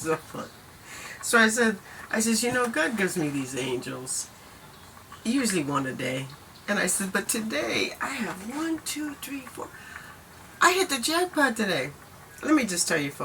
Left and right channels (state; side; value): identical; both; correlation 1.00